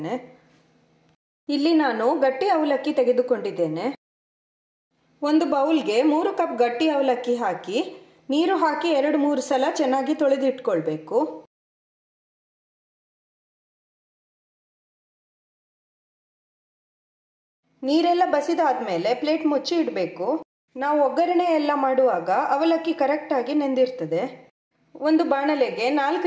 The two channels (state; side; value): identical; both; correlation 1.00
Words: ಇಲ್ಲಿ ನಾನು ಗಟ್ಟಿ ಅವಲಕ್ಕಿ ತೆಗೆದುಕೊಂಡಿದ್ದೇನೆ. ಒಂದು ಬೌಲ್ಗೆ 3 ಕಪ್ ಗಟ್ಟಿ ಅವಲಕ್ಕಿ ಹಾಕಿ ನೀರು ಹಾಕಿ 2-3 ಸಲ ಚೆನ್ನಾಗಿ ತೊಳೆದಿಟ್ಕೊಳ್ಬೇಕು. ನೀರೆಲ್ಲ ಬಸಿದಾದ್ಮೇಲೆ ಪ್ಲೇಟ್ ಮುಚ್ಚಿ ಇಡಬೇಕು. ನಾವು ಒಗ್ಗರಣೆ ಎಲ್ಲ ಮಾಡುವಾಗ ಅವಲಕ್ಕಿ ಕರೆಕ್ಟಾಗಿ ನೆಂದಿರ್ತದೆ. ಒಂದು ಬಾಣಲೆಗೆ